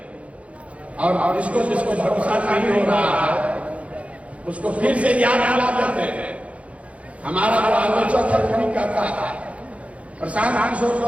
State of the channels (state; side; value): late; left; 0.064 ms